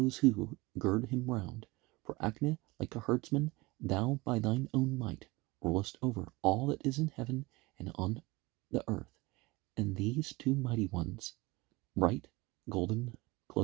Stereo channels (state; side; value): quieter; left; 22.8 dB